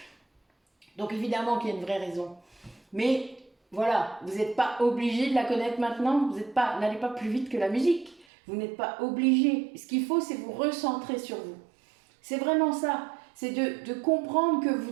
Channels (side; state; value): left; drops out; at 8.2 s